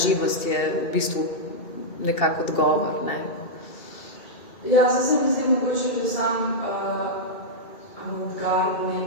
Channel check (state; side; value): late; right; 2.7 ms